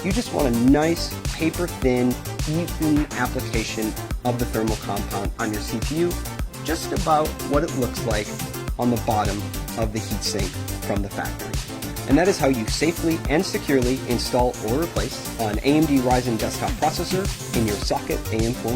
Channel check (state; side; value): identical; both; correlation 1.00